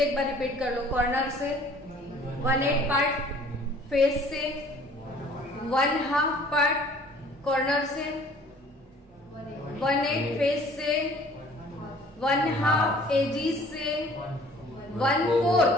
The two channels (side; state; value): both; normal; correlation 0.53